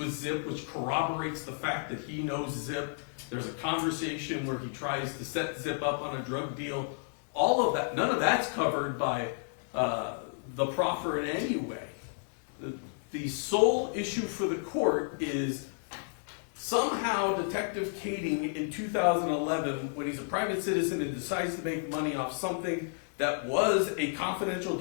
Zip, which corroborates the fact that he knows Zip. There's a conversation where he tries to set Zip up on a drug deal. All of that, none of that's covered by the proffer in any way. The sole issue for the court is somehow Detective Kading in 2011, when he's a private citizen and decides to make money off something that was a confidential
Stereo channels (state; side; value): silent; right; digital silence